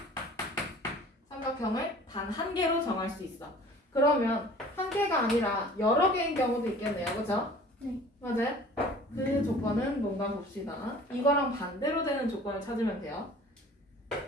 삼각형을 단 한 개로 정할 수 있어. 그러면 한 개가 아니라 여러 개인 경우도 있겠네요. 그죠? 네. 맞아요? 그 조건은 뭔가 봅시다. 이거랑 반대로 되는 조건을 찾으면 돼요.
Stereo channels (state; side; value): normal; both; correlation 0.47